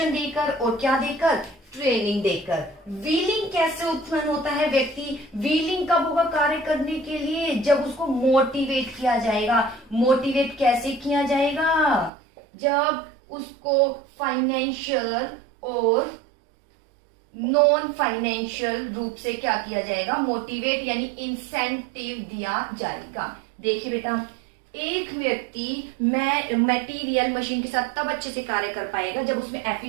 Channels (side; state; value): left; drops out; at 12.1 s